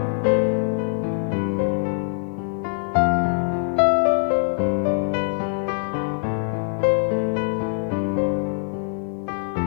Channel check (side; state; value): right; silent; digital silence